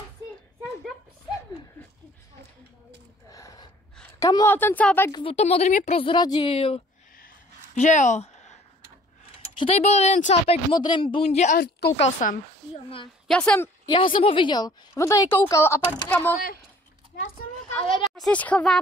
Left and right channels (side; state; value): both; normal; correlation 0.54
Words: si šel dopředu. Kamo, a ten cápek, to modrý mě prozradil. Že jo? Že tady byl jeden cápek v modrém bundě a koukal jsem. Jo, ne. Já jsem ho viděl. On tady koukal a pak kamo... Ale já se